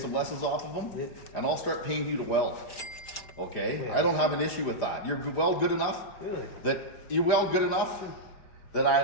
lessons off of them, Yeah. and I'll start paying you to weld. Okay? Yeah. I don't have an issue with that. You're weld good enough Really? that you weld good enough that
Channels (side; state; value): right; late; 5.0 ms